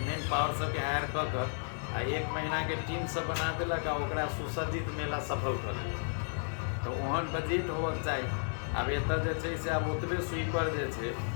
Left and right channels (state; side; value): silent; right; 55 dB below the other